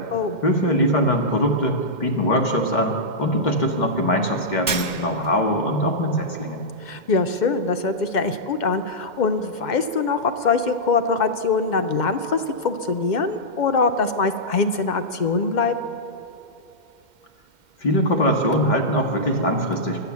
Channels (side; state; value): right; late; 2.1 ms